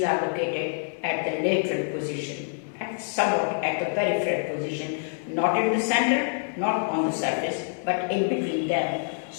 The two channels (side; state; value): right; silent; 61 dB below the other